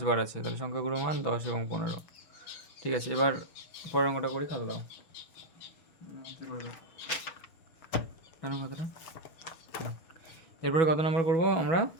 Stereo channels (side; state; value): right; late; 6.6 ms